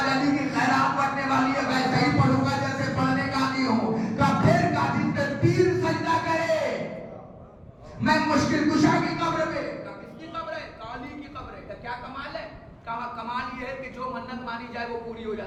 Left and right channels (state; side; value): identical; both; correlation 1.00